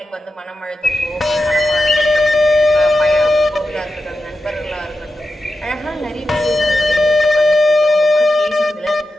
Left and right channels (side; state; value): both; normal; correlation 0.90